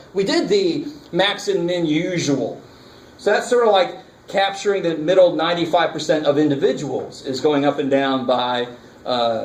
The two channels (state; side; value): identical; both; correlation 1.00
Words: We did the max and min usual. So that's sort of like capturing the middle 95% of individuals is going up and down by